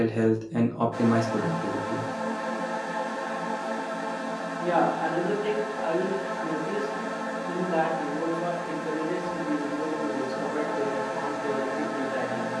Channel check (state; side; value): identical; both; correlation 1.00